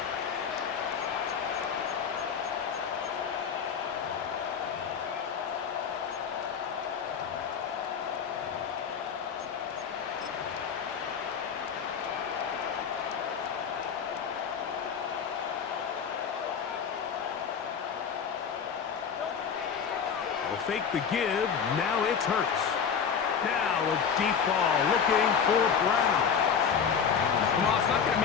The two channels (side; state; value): right; quieter; 6.9 dB